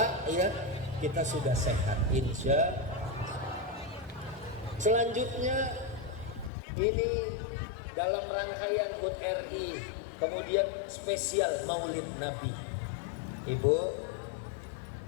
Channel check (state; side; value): drops out; right; at 6.5 s